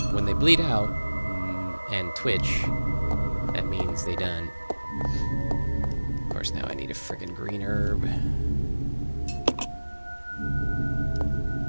When they bleed out and twitch, that means they done. Of course, now I need a friggin' green herb.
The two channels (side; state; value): both; inverted; correlation -1.00